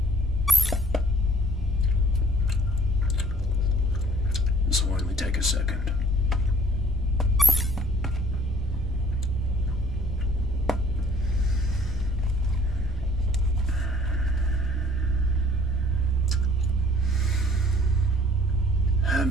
This will only take a second.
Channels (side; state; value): both; normal; correlation 0.59